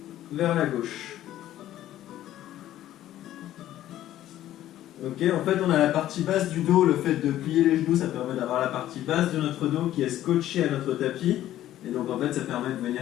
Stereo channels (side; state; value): right; quieter; 13.1 dB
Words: vers la gauche. Ok, en fait on a la partie basse du dos, le fait de plier les genoux, ça permet d'avoir la partie basse de notre dos qui est scotchée à notre tapis. Et donc en fait ça permet de